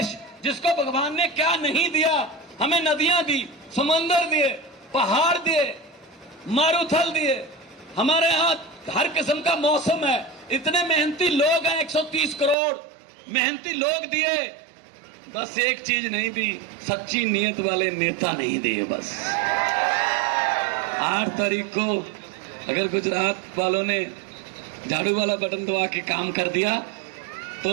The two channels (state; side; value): drops out; left; at 12.6 s